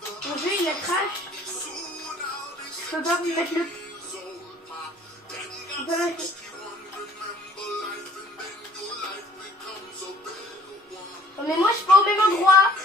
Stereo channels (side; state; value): both; normal; correlation 0.56